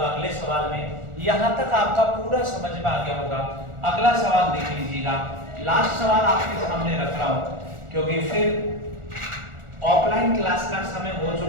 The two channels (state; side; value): late; left; 1.4 ms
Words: अगले सवाल में। यहाँ तक आपका पूरा समझ में आ गया होगा। अगला सवाल देख लीजिएगा। लास्ट सवाल आपके सामने रख रहा हूं क्योंकि फिर ऑफलाइन क्लास का समय हो